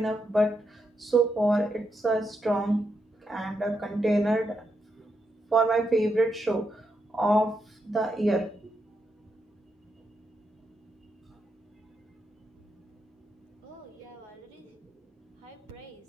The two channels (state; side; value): normal; both; correlation 0.82